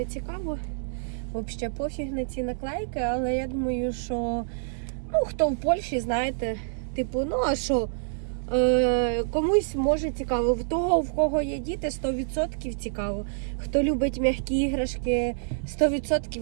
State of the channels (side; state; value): left; silent; digital silence